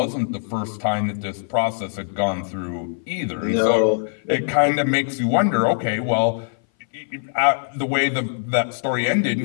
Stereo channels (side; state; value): right; silent; 58 dB below the other